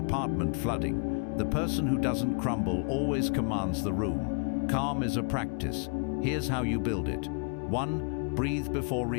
flooding, the person who doesn't crumble always commands the room. Calm is a practice. Here's how you build it. 1. Breathe before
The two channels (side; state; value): right; quieter; 37.8 dB